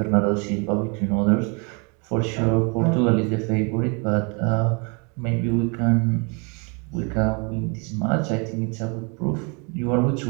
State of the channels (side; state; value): left; quieter; 33.3 dB